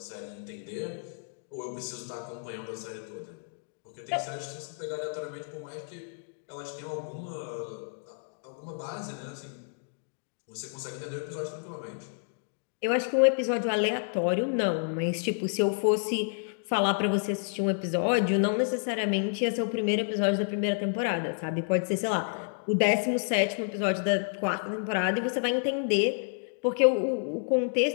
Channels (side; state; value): right; silent; digital silence